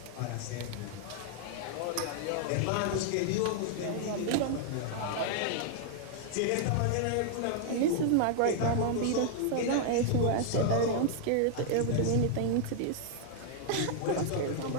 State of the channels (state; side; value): different; both; correlation 0.00